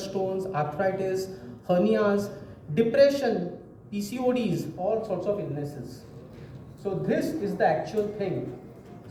stones, arthritis, hernias, depression, PCODs, all sorts of illnesses. So this is the actual thing.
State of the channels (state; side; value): identical; both; correlation 1.00